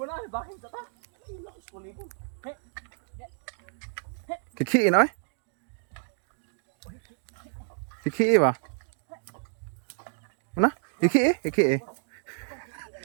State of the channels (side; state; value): left; silent; 58 dB below the other